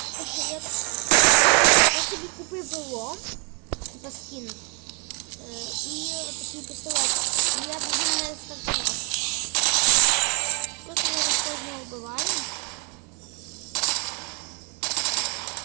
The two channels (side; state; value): left; quieter; 35.1 dB